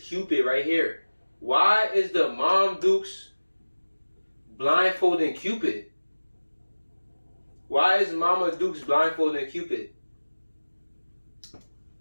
right here. Why is the Mom Dukes blindfolding Cupid? Why is Mama Dukes blindfolding Cupid?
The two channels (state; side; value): inverted; both; correlation -1.00